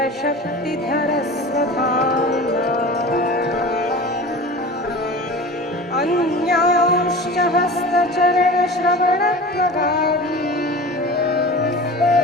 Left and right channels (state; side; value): normal; both; correlation 0.35